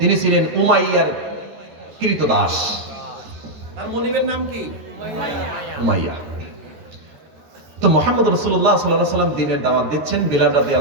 ছিলেন উমাইয়ার কৃতদাস। তার মনিবের নাম কি? উমাইয়া। তো মুহাম্মদ রাসূলুল্লাহ সাল্লাল্লাহু আলাইহি ওয়াসাল্লাম দ্বীনের দাওয়াত দিচ্ছেন। বিলাল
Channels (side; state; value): left; late; 13 ms